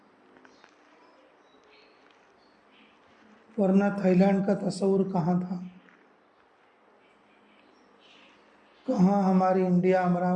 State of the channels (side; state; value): both; identical; correlation 1.00